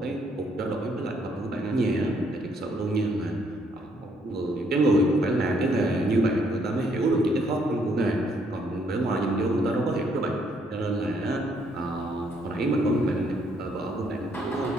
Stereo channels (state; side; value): normal; both; correlation 0.69